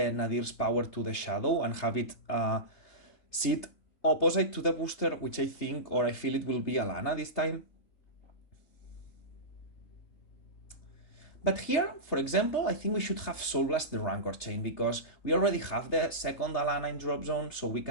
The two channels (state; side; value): late; right; 3.3 ms